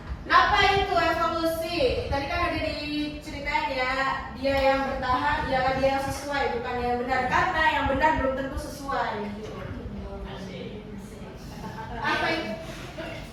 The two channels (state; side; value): identical; both; correlation 1.00